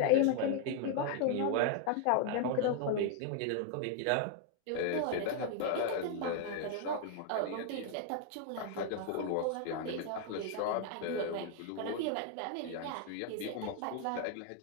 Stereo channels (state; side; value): different; both; correlation 0.00